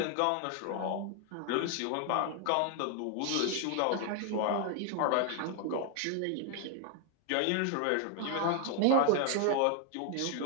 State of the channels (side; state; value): both; different; correlation 0.00